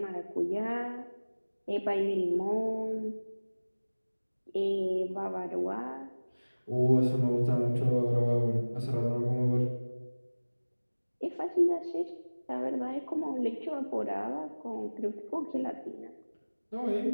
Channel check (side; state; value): both; inverted; correlation -1.00